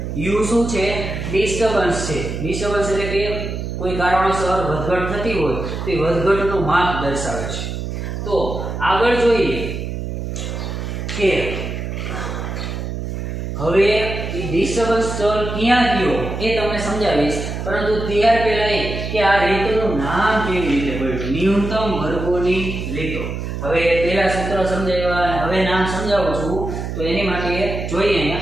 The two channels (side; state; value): right; noise; hum, 5 dB below the sound